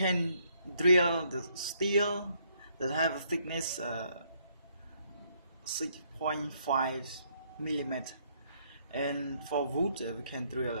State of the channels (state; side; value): inverted; both; correlation -0.70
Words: drill the steel that have a thickness 6.5 millimeter, and for wood we can